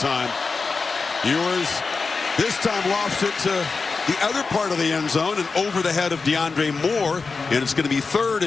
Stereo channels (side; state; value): right; quieter; 4.4 dB